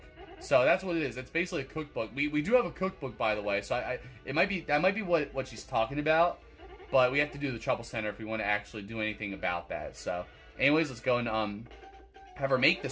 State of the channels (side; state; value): both; identical; correlation 1.00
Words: So that's what it is. It's basically a cookbook. We do have a cookbook, by the way. So that might be what she's talking about. But we have to do the Trouble Center if we want to actually do anything about that. So, anyways, let's go and have her make